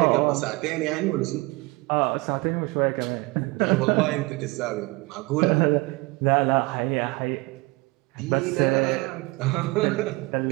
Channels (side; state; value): left; quieter; 23.9 dB